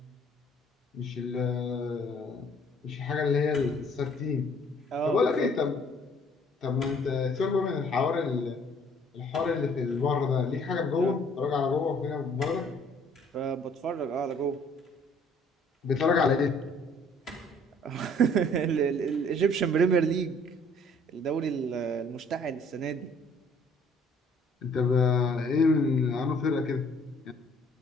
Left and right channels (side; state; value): both; normal; correlation 0.58